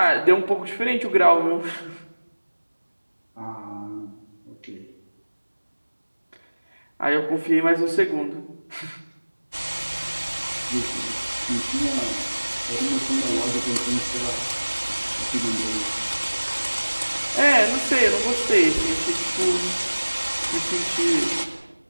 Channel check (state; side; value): inverted; both; correlation -1.00